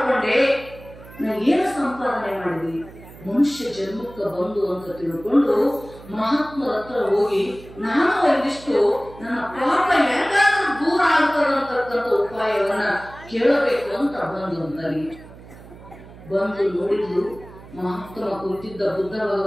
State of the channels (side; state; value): right; noise; hum, 19 dB below the sound